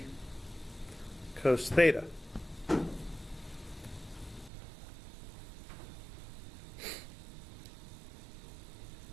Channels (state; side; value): drops out; left; at 4.5 s